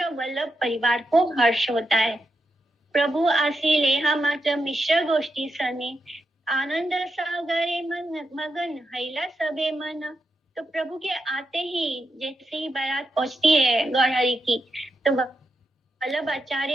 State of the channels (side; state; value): both; normal; correlation 0.86